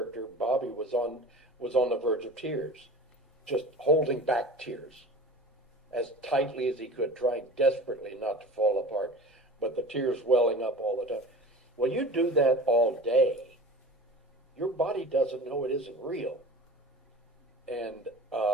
Bobby was on the verge of tears, just holding back tears as tightly as he could, trying desperately not to fall apart, but the tears welling up all the time. Well, you do that all day, your body doesn't know it isn't real. And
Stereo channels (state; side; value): normal; both; correlation 0.38